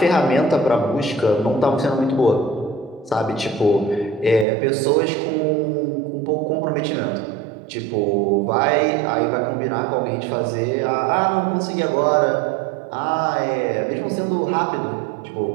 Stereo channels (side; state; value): left; drops out; at 4.5 s